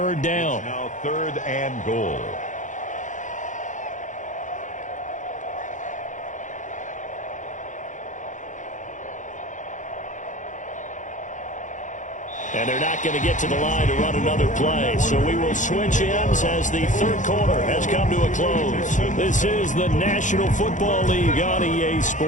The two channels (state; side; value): late; right; 0.36 ms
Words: down. Now third and goal. And they're not going to get to the line to run another play. So we will switch ends as the third quarter has come to a close. This is the National Football League on EA